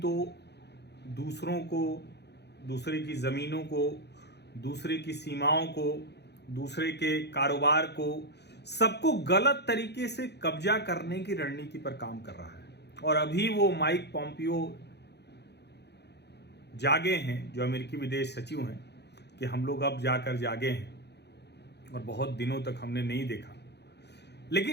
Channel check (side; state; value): right; late; 0.49 ms